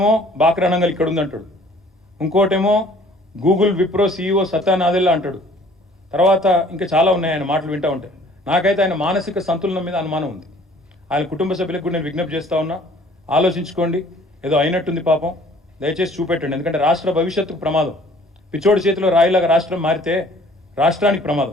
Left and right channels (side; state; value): both; normal; correlation 0.54